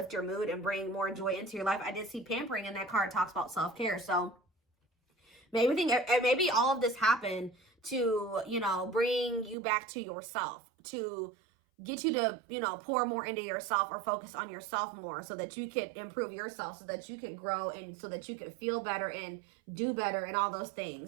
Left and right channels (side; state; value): left; drops out; at 9.6 s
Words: your mood and bring more joy into your life. I did see pampering in that card. It talks about self-care, so maybe all of this happened to, you know, bring you back to yourself, to get you to, you know, pour more into yourself or focus on yourself more so that you can improve yourself, so that you can grow and so that you can feel better and do better and all those